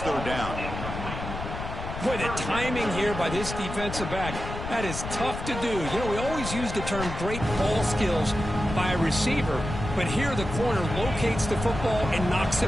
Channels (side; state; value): left; noise; rumble, 7 dB below the sound